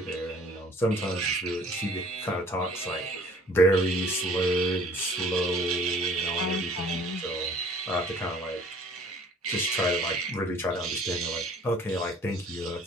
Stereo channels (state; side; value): normal; both; correlation 0.53